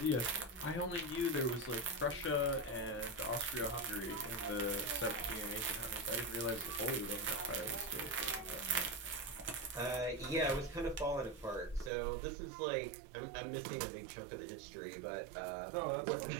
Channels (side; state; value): left; drops out; at 11.9 s